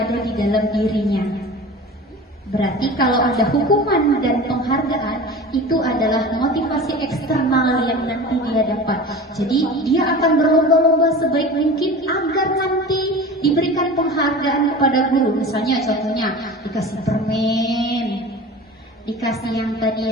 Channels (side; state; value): both; normal; correlation 0.36